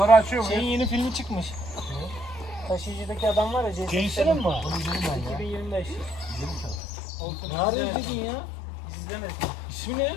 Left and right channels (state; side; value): drops out; right; at 6.8 s